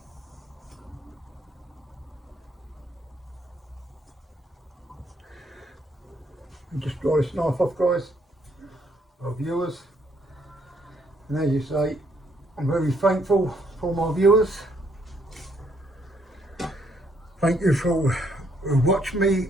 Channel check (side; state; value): both; normal; correlation 0.70